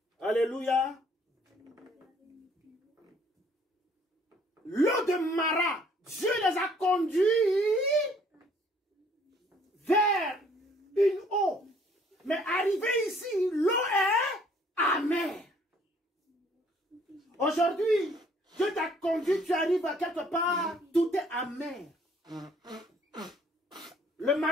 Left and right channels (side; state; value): both; normal; correlation 0.61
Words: Alléluia. L'eau de Mara, Dieu les a conduits vers une eau. Mais arrivé ici, l'eau est amère. Aujourd'hui, Dieu t'a conduit, tu arrives à quelque part, tout est amer. Le